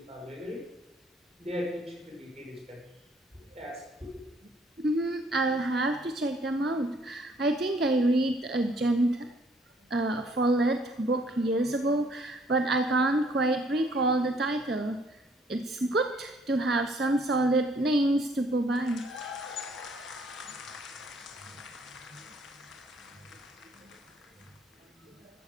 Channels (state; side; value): normal; both; correlation 0.63